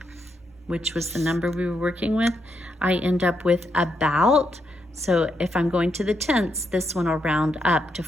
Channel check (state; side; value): normal; both; correlation 0.80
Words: which was the number we were working with, I end up with about. So if I'm going to the tenths, this one will round up to